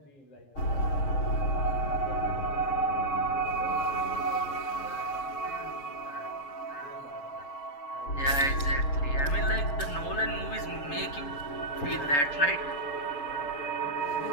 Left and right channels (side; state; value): right; late; 7.1 ms